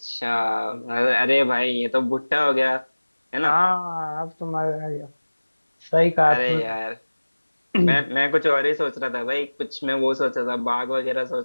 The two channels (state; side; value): inverted; both; correlation -1.00